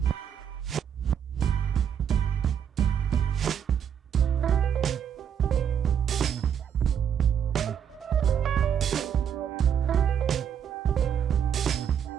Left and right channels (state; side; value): quieter; left; 8.4 dB